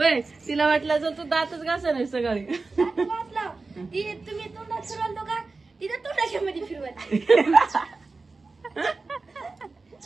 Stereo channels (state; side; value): quieter; left; 3.8 dB